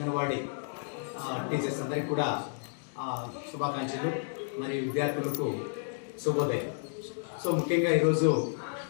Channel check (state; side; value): silent; right; digital silence